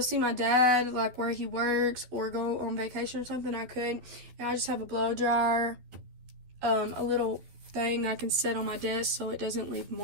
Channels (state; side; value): late; left; 11 ms